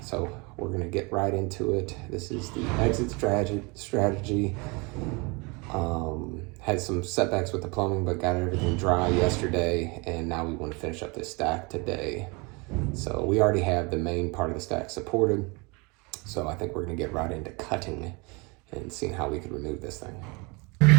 So we're gonna get right into it. This is the exit strategy. Had some setbacks with the plumbing, but got everything dry yesterday, and now we want to finish up this stack today. So we already have the main part of the stack supported. So I think we're gonna get right into cutting and seeing how we could remove this thing.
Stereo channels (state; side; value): quieter; left; 28.3 dB